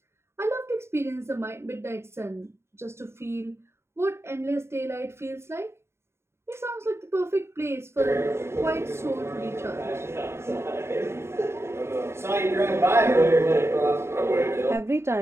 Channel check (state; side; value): late; left; 0.13 ms